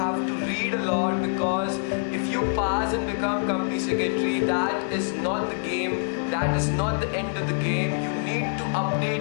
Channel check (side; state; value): right; silent; 59 dB below the other